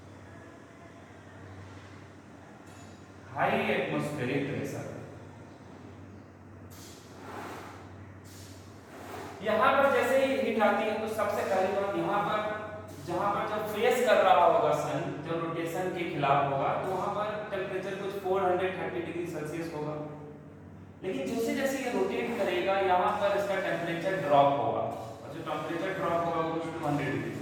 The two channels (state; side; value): identical; both; correlation 1.00